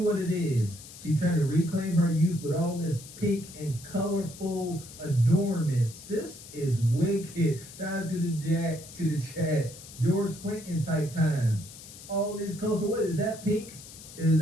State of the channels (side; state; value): left; noise; hiss, 16 dB below the sound